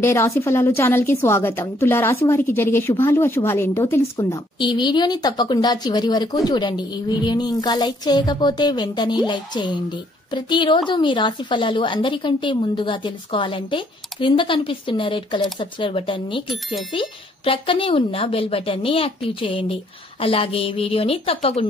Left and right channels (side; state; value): both; normal; correlation 0.67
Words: రాశి ఫలాలు ఛానల్ కి స్వాగతం. తులా రాశి వారికి జరిగే శుభాలు అశుభాలు ఏంటో తెలుసుకుందాం. ఈ వీడియోని తప్పకుండా చివరి వరకు చూడండి. ఈ వీడియోని ఇంకా లైక్ చేయకపోతే వెంటనే లైక్ చేయండి. ప్రతిరోజు మీ రాశి ఫలాలు అందరికంటే ముందుగా తెలుసుకోవాలంటే క్రింద కనిపిస్తున్న రెడ్ కలర్ సబ్స్క్రైబ్ బటన్ ని క్లిక్ చేసి ప్రక్కనే ఉన్న బెల్ బటన్ ని యాక్టివ్ చేయండి. అలాగే వీడియోని